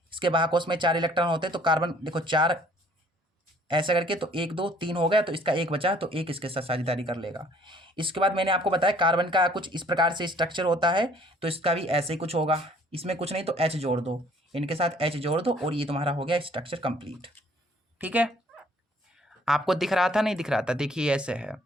इसके बाहकोश में 4 इलेक्ट्रॉन होते हैं, तो कार्बन देखो 4 ऐसा करके, तो 1 2 3 हो गया, तो इसका 1 बचा, तो 1 इसके साथ साझेदारी कर लेगा। इसके बाद मैंने आपको बताया कार्बन का कुछ इस प्रकार से स्ट्रक्चर होता है, तो इसका भी ऐसे ही कुछ होगा। इसमें कुछ नहीं तो H जोड़ दो, इनके साथ H जोड़ दो, और ये तुम्हारा हो गया स्ट्रक्चर कंप्लीट, ठीक है। आपको दिख रहा था, नहीं दिख रहा था, देखिए ऐसे है,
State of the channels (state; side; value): normal; both; correlation 0.58